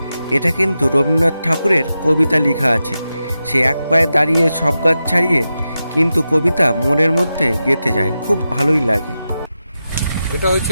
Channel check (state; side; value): inverted; both; correlation -0.90